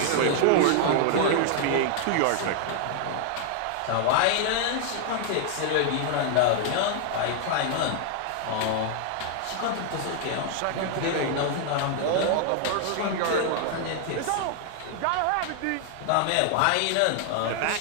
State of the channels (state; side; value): different; both; correlation 0.00